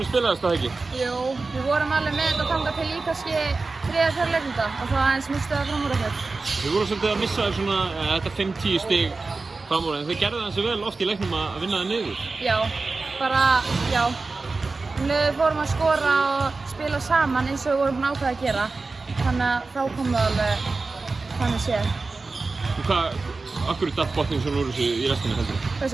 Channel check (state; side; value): quieter; left; 3.8 dB